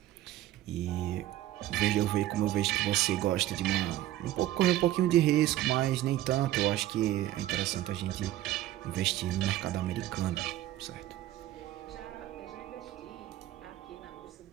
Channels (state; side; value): quieter; left; 14.2 dB